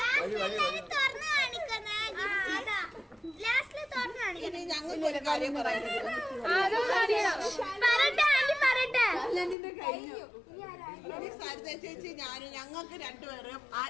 ഇനി ഞങ്ങൾക്ക് ഒരു കാര്യം പറയാനുണ്ട്. സരിത ചേച്ചി ഞാനും ഞങ്ങൾക്ക് രണ്ടുപേരും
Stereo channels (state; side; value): drops out; right; at 9.6 s